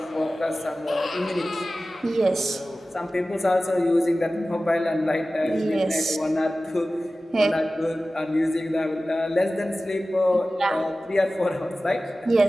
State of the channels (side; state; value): both; normal; correlation 0.96